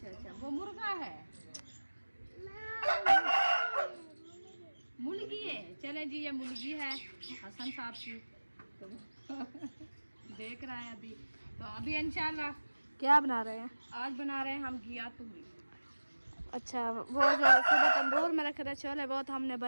अच्छा वो मुर्गा है, मुर्गी है। चले जी ये मुर्गी है हसन साहब की, तो देख रहा है अभी। तो अभी इंशाल्लाह क्या बना रहे हैं? आज बना रहे हैं हम घिया तूरी। अच्छा वो जो सुबह तंदूर में रखे थे छोले, वो तो हमने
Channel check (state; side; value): inverted; both; correlation -1.00